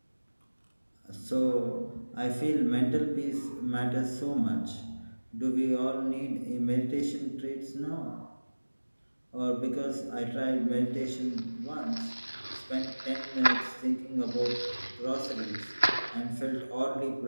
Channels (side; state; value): both; inverted; correlation -1.00